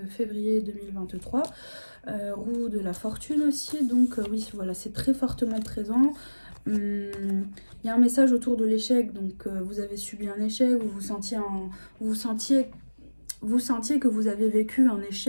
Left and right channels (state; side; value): inverted; both; correlation -1.00